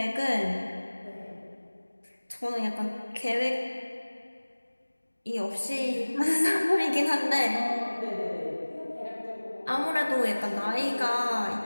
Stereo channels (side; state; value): both; inverted; correlation -1.00